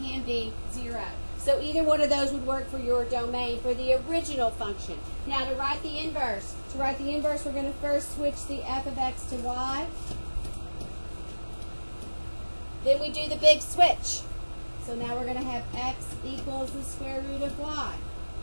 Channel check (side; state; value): both; inverted; correlation -1.00